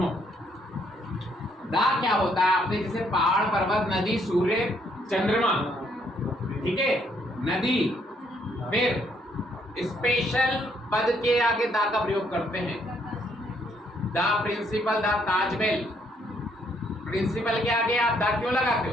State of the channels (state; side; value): normal; both; correlation 0.70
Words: दा क्या होता है? आपने जैसे पहाड़, पर्वत, नदी, सूर्य, चंद्रमा, ठीक है, नदी, फिर स्पेशल पद के आगे दा का प्रयोग करते हैं। The principal, the Taj Mahal, principal के आगे आप दा क्यों लगाते